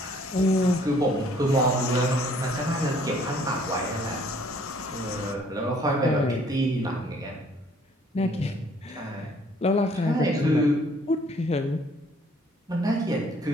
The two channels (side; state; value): both; normal; correlation 0.60